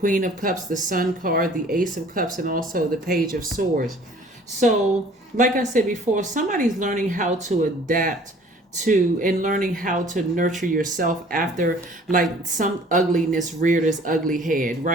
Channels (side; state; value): both; normal; correlation 0.52